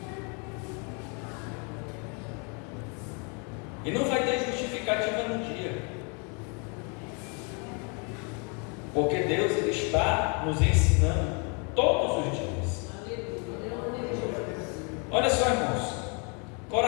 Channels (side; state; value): right; quieter; 35.4 dB